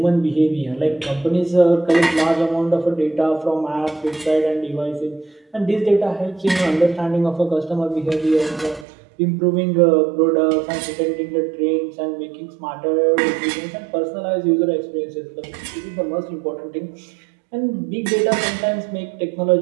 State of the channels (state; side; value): drops out; left; at 8.8 s